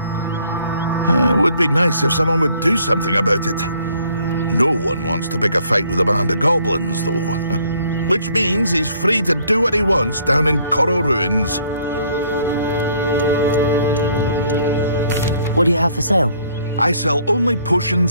It would be nice if someone would do something about it. No one wants to pick a fight with a band of goblins, though. Which means he's free to do what he wants down in Coral Ruins. What do you have for sale? I sell only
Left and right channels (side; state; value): both; inverted; correlation -0.63